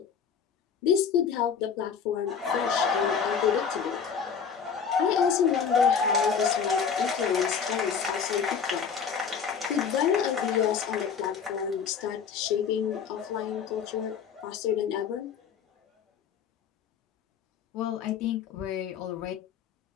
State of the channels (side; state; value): right; quieter; 6.7 dB